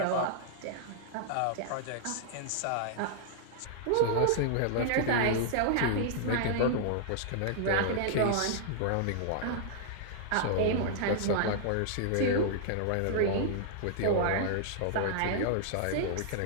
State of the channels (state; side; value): different; both; correlation -0.01